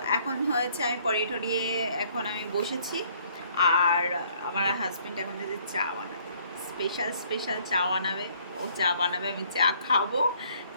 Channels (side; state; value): both; inverted; correlation -0.62